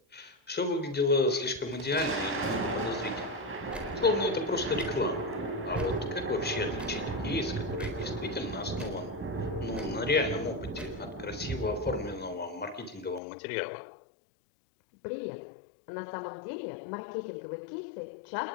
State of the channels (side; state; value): right; drops out; at 13.2 s